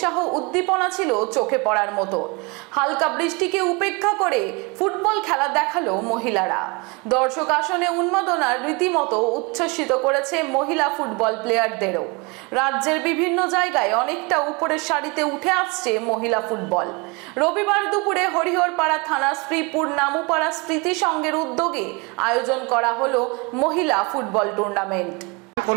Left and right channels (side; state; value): left; quieter; 28.6 dB